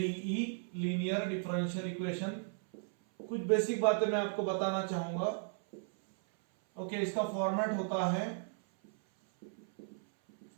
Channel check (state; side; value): silent; left; 54 dB below the other